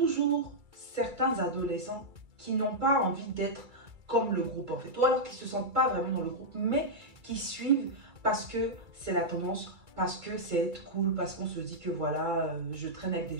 certains adolescents qui n'ont pas envie d'être comme le groupe en fait. Ou alors qui ne se sentent pas vraiment dans le groupe, mais qui suivent parce que c'est la tendance, parce que c'est être cool, parce qu'on se dit que voilà, je traîne avec des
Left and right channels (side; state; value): left; late; 2.3 ms